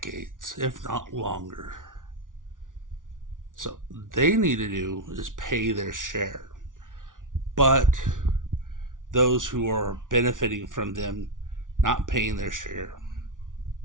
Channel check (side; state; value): left; late; 0.88 ms